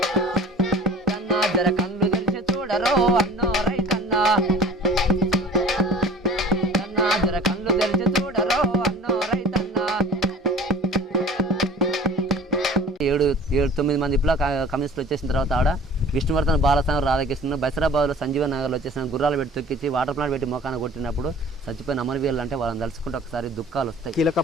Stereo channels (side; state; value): both; normal; correlation 0.43